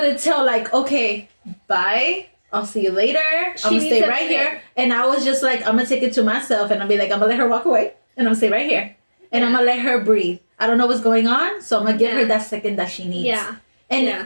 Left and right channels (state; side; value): inverted; both; correlation -1.00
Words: tell like, okay, bye. I'll see you later. I'm gonna stay right here. And I was just like, I'm gonna take it to myself and I'll be like, I'm gonna let her walk away and I'm gonna stay right here. And I'm gonna let her breathe. I don't know what's going on, so I'm gonna give her that second that she needs. Yeah.